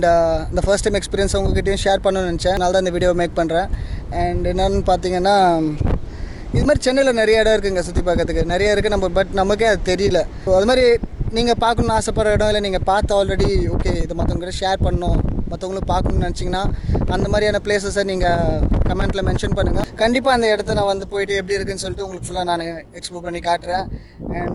இந்த ஃபர்ஸ்ட் டைம் எக்ஸ்பீரியன்ஸ் உங்ககிட்டையும் ஷேர் பண்ணணும்னு நினச்சேன். அதனால தான் இந்த வீடியோ மேக் பண்ணுறேன். அண்ட் என்னென்னு பார்த்தீங்கன்னா, இது மாதிரி சென்னையில் நிறைய இடம் இருக்குதுங்க சுற்றி பார்க்கறதுக்கு. நிறைய இருக்குது பட் நமக்கே அது தெரியல. அது மாதிரி நீங்கள் பார்க்கணுன்னு ஆசைப்படுற இடம் இல்லை நீங்கள் பார்த்து ஆல்ரெடி ஓகே இதை மற்றவங்ககிட்ட ஷேர் பண்ணணும், மற்றவங்களும் பார்க்கணுன்னு நினச்சிங்கன்னா அந்த மாதிரியான பிளேஸஸை நீங்கள் கமெண்ட்டில் மென்ஷன் பண்ணுங்கள். கண்டிப்பாக அந்த இடத்த நான் வந்து போயிட்டு எப்படி இருக்குன்னு சொல்லிட்டு உங்களுக்கு ஃபுல்லாக நான் எக்ஸ்ப்ளோர் பண்ணி காட்டுறேன்.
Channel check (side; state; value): both; identical; correlation 1.00